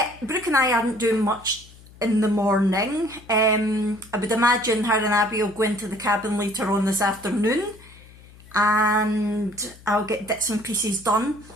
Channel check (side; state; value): left; noise; hum, 22 dB below the sound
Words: Brooke and I aren't doing much in the morning. I would imagine her and Abby will go into the cabin later on this afternoon and I'll get bits and pieces done.